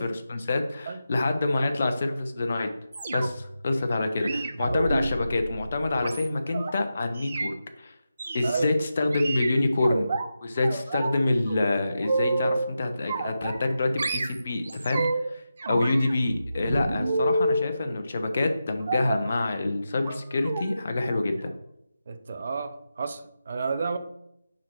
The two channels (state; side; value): inverted; both; correlation -0.89